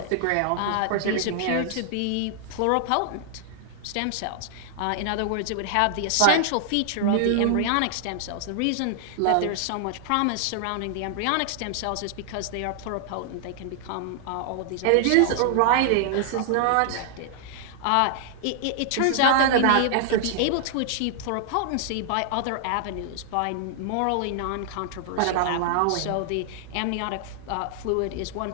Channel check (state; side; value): different; both; correlation -0.01